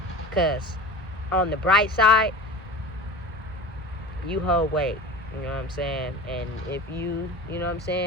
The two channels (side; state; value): both; normal; correlation 0.35